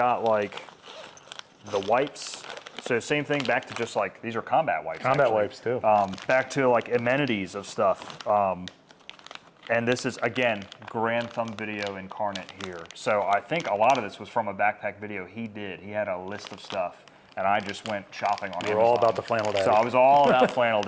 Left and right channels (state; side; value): identical; both; correlation 1.00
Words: like the wipes. So same thing, back to just like, these are combat wipes. Combat wipes too. Back to like amenities of stuff. And this is, again, Grand Thumb Video incarnate here. So I think a lot of this was from a backpack video he did. He had a list of stuff, and I just went shopping on Amazon. We're all about the flannel daddy. So I was all about flannel